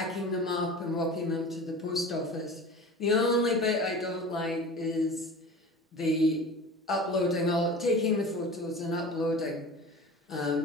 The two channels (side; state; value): both; normal; correlation 0.37